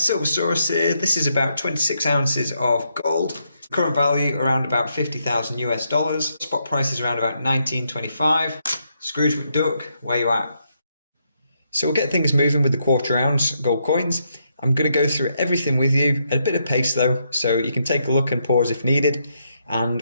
here. This is about 26 ounces of gold. Current value around about 50,000 US dollars. Spot price is around about 19.25. Scrooge McDuck, where you at? So we'll get things moving with the quarter ounce gold coins. I'm going to go through everything with you at a bit of pace though, so you can take a look and pause if needed.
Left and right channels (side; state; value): both; inverted; correlation -0.79